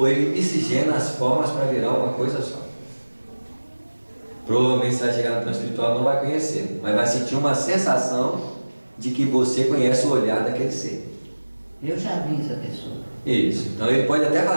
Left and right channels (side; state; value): both; inverted; correlation -1.00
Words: ele miscigena as formas para virar uma coisa só. Provavelmente você vai chegar no plano espiritual e não vai conhecer, mas vai sentir uma sensação de que você conhece o olhar daquele ser. Eu já vi essa pessoa. Isso, então ele pode até